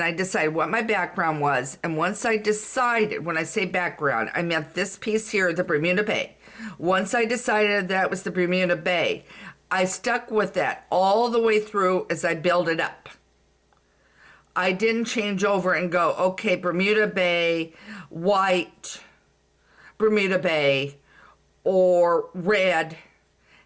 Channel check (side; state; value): both; identical; correlation 1.00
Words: I decided what my background was. And once I decided, when I say background, I meant this piece here, the Bermuda Bay. Once I decided that was the Bermuda Bay, I stuck with that all the way through as I build it up. I didn't change over and go, okay, Bermuda Bay, white, Bermuda Bay, or red,